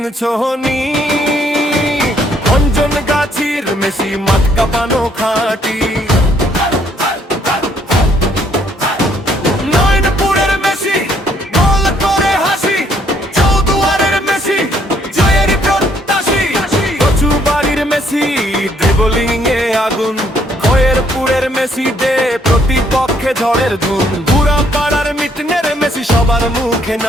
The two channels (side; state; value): both; normal; correlation 0.67